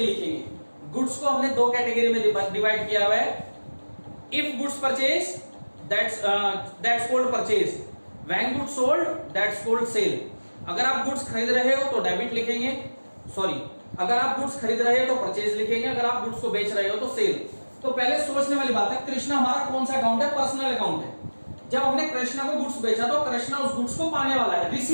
लिखेंगे। गुड्स को हमने दो कैटेगरी में डिवाइड किया हुआ है, if goods purchase that's called purchase, when goods sold that's called sale. अगर आप गुड्स खरीद रहे हो तो डेबिट लिखेंगे, सॉरी अगर आप गुड्स खरीद रहे हो तो परचेज लिखेंगे, अगर आप गुड्स को बेच रहे हो तो सेल। तो पहले सोचने वाली बात है, कृष्णा हमारा कौन सा अकाउंट है? पर्सनल अकाउंट है। जब हमने कृष्णा को गुड्स बेचा तो कृष्णा उस गुड्स को पाने वाला है,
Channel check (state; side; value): inverted; both; correlation -1.00